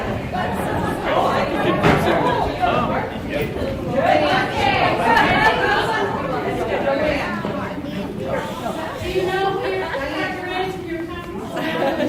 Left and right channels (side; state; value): both; identical; correlation 1.00